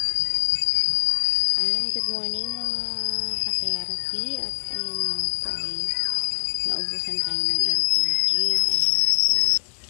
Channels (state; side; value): silent; right; 63 dB below the other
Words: Ayan, good morning mga ka-therapy. At ayun nga po ay naubusan tayo ng LPG. Ayan. So,